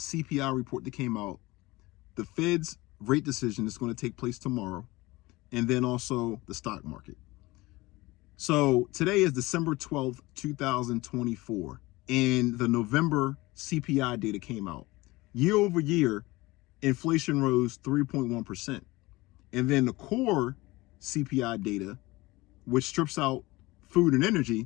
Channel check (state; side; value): quieter; right; 20.9 dB